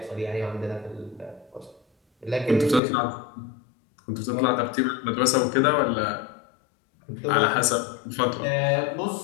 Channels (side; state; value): right; drops out; at 2.8 s